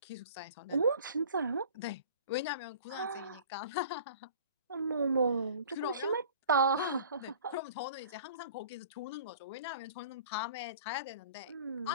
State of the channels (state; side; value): inverted; both; correlation -0.46